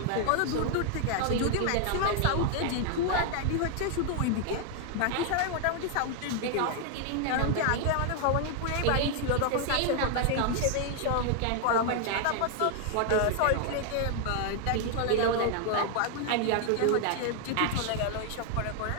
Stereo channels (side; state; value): both; different; correlation 0.00